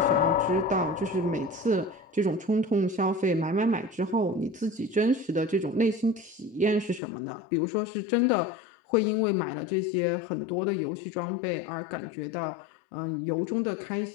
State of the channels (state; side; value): drops out; right; at 7.0 s